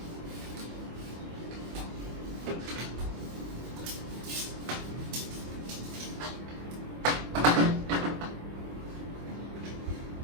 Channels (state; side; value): late; left; 24 ms